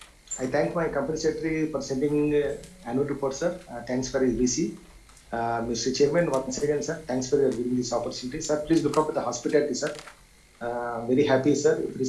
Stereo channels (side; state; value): both; identical; correlation 1.00